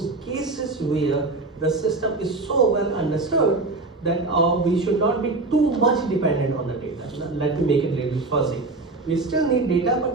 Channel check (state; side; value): quieter; left; 3.3 dB